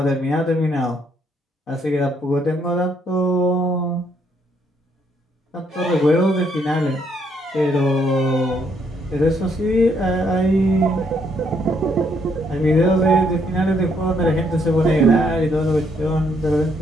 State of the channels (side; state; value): both; normal; correlation 0.71